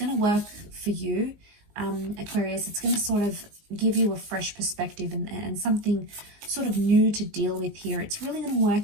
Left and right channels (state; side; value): late; left; 19 ms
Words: to work for you, Aquarius, it's going to sort of give you a fresh perspective and something sort of new to deal with here. It's really going to